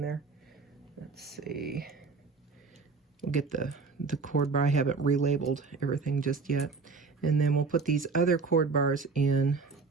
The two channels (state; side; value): quieter; left; 4.4 dB